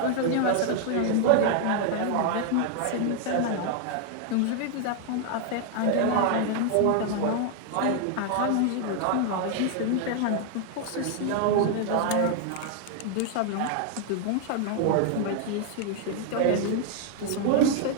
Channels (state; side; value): different; both; correlation 0.00